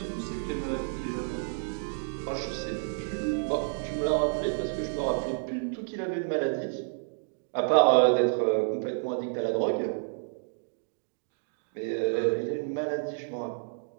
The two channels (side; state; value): left; silent; digital silence